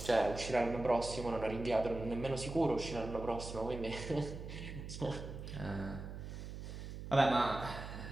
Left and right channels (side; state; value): right; noise; hum, 9 dB below the sound